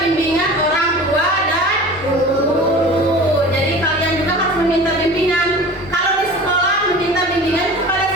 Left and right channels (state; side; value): normal; both; correlation 0.38